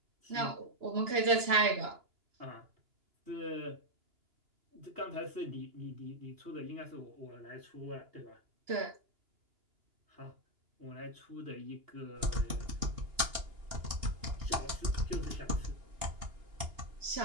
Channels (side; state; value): left; late; 2.9 ms